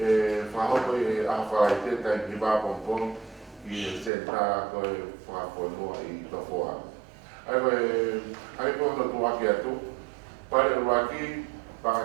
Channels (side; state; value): left; drops out; at 4.1 s